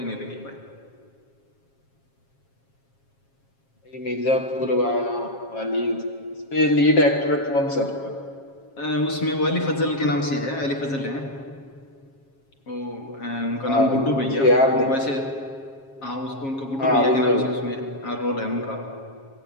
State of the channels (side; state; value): right; late; 7.4 ms